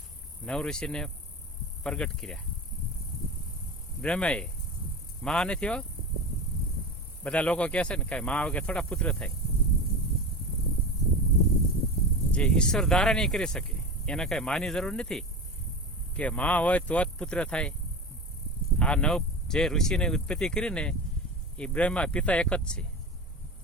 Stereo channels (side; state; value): both; normal; correlation 0.28